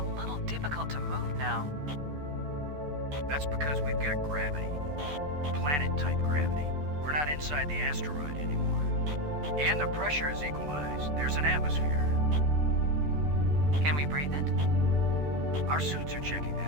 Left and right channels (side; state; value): left; late; 14 ms